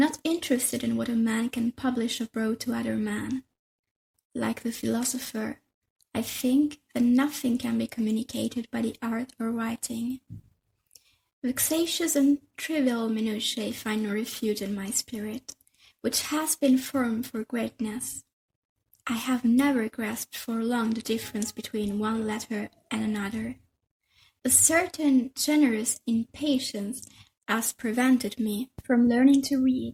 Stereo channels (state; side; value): identical; both; correlation 1.00